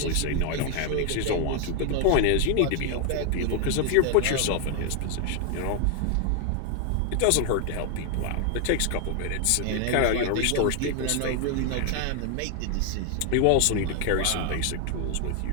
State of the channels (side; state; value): both; different; correlation 0.00